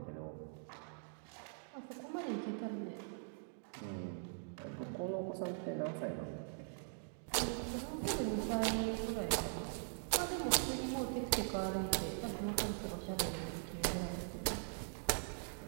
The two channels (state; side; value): silent; left; digital silence